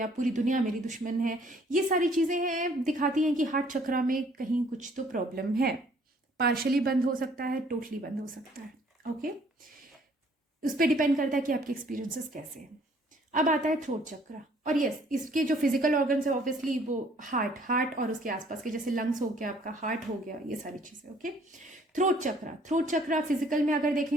पूरी दुनिया मेरी दुश्मन है, ये सारी चीज़ें हैं, दिखाती हैं कि हार्ट चक्र में कहीं कुछ तो प्रॉब्लम है। पार्शली बंद हो सकता है, टोटली बंद हो सकता है। ओके, उस पर डिपेंड करता है कि आपके एक्सपीरियंसेस कैसे हैं। अब आता है थ्रोट चक्र, और यस, इसके जो फिजिकल ऑर्गन्स है ऑब्वियसली वो हार्ट और उसके आसपास के, जैसे लंग्स हो गया, आपका हार्ट हो गया, ये सारी चीजें। ओके, थ्रोट चक्र फिजिकल में अगर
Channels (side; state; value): both; normal; correlation 0.60